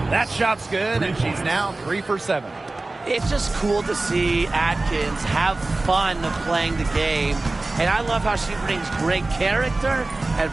That shot's good, and she's now 3 for 7. It's just cool to see Atkins have fun playing the game. And I love how she brings great character and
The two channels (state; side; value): quieter; left; 3.1 dB